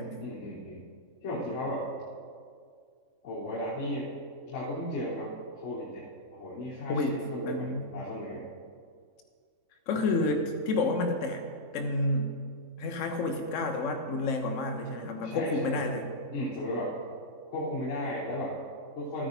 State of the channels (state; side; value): late; right; 3.6 ms